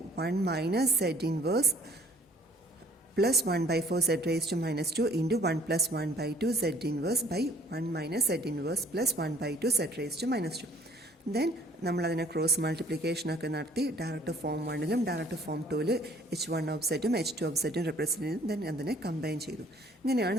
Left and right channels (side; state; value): both; normal; correlation 0.57